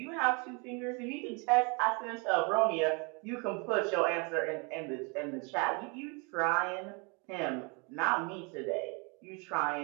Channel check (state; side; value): quieter; left; 32.3 dB